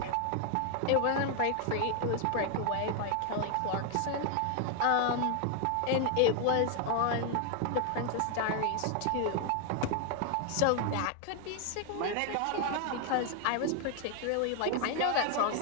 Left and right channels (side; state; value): both; different; correlation 0.00